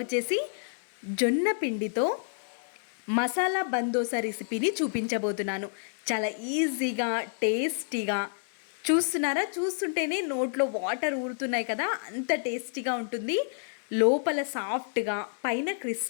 జొన్న పిండితో మసాలా బందోసా రెసిపీని చూపించబోతున్నాను. చాలా ఈజీగా, టేస్టీగా. చూస్తున్నారా? చూస్తుంటేనే నోట్లో వాటర్ ఊరుతున్నాయి కదా, అంత టేస్టీగా ఉంటుంది. లోపల సాఫ్ట్గా, పైన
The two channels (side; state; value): right; silent; digital silence